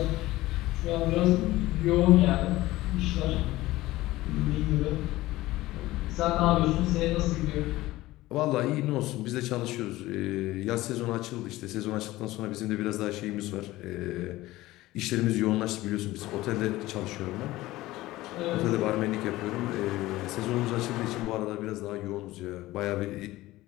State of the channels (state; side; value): quieter; right; 17.6 dB